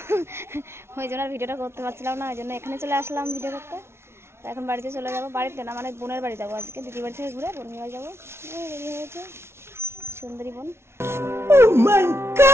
ওই জন্য আর ভিডিওটা করতে পারছিলাম না, ওই জন্য এখানে চলে আসলাম ভিডিও করতে। তো এখন বাড়িতে চলে যাবো, বাড়িতে না মানে বোনের বাড়ি যাবো আজকে, দিদি বাড়ি থেকে ঘুরে বোনের বাড়ি যাবো। রেডি হয়েছে সুন্দরী বোন। Oh my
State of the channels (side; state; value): left; late; 0.12 ms